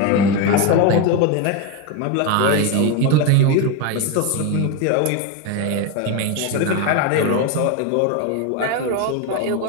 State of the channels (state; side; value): different; both; correlation 0.03